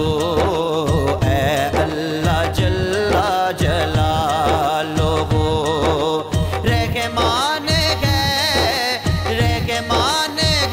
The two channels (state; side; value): identical; both; correlation 1.00